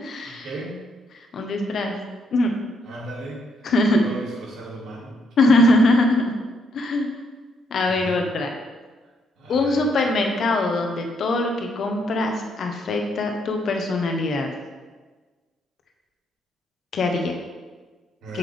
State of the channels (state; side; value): normal; both; correlation 0.74